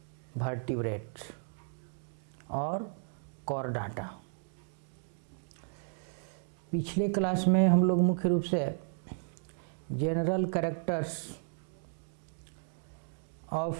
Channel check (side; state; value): left; silent; 55 dB below the other